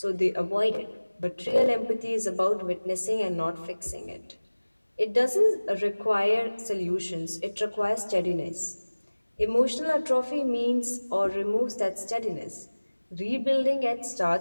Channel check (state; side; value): inverted; both; correlation -1.00